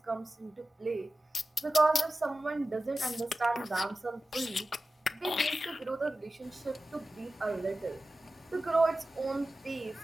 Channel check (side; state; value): both; normal; correlation 0.94